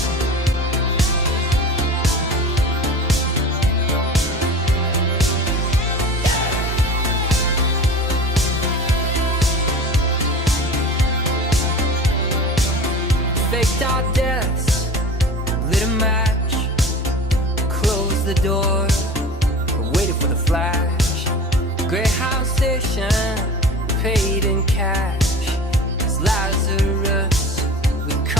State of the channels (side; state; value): both; normal; correlation 0.37